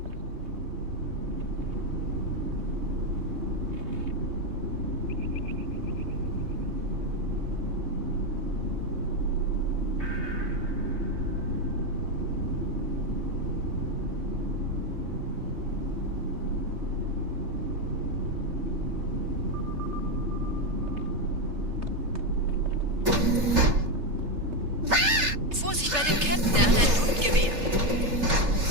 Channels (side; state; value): left; late; 3.3 ms